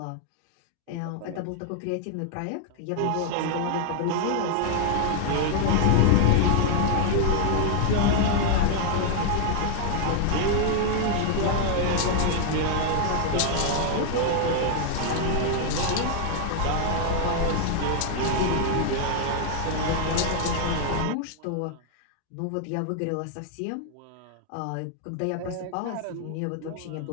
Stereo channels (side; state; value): both; different; correlation 0.00